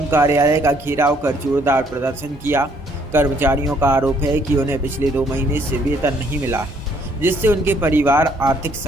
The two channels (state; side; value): normal; both; correlation 0.65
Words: कार्यालय का घेराव कर जोरदार प्रदर्शन किया। कर्मचारियों का आरोप है कि उन्हें पिछले 2 महीने से वेतन नहीं मिला है, जिससे उनके परिवार आर्थिक